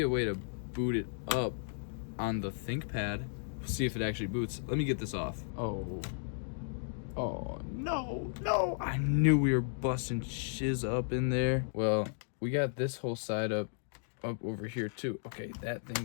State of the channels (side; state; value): right; silent; digital silence